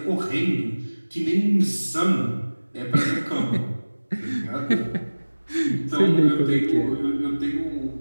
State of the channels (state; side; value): inverted; both; correlation -1.00